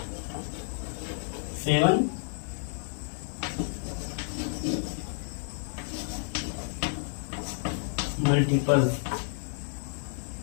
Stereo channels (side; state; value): right; silent; digital silence